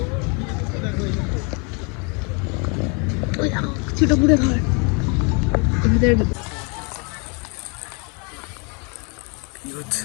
ওই ছোট পুরে ঘর ওদের।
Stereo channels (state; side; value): quieter; right; 33.9 dB